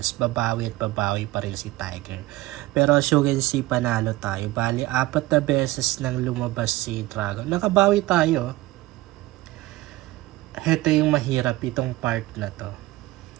Babawi at babawi pa rin si Tiger. Pero as you can see, panalo tayo. Bali, 4 na beses nang lumabas si Dragon. Nakabawi tayo. Ito yung mahirap itong part na to.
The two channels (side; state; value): left; quieter; 18.4 dB